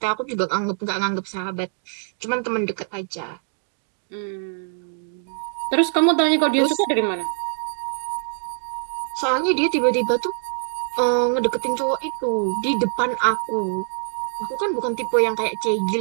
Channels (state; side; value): silent; left; digital silence